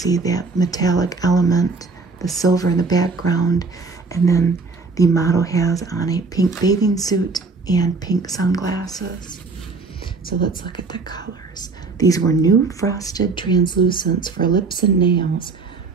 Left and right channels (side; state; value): left; quieter; 4.1 dB